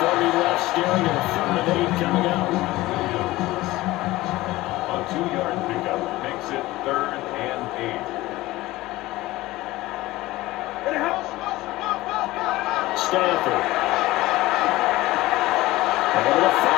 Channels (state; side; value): quieter; right; 18.2 dB